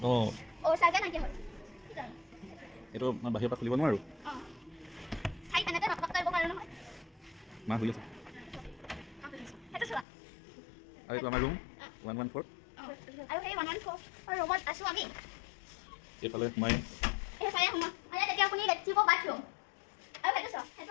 এইটো বাহিৰৰ পৰা খুলিব নোৱাৰোঁ। মা শুই আছে। আৰু এইটো আমাৰ ৰুম 114। এইফালে সোমাই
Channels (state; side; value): drops out; right; at 10.1 s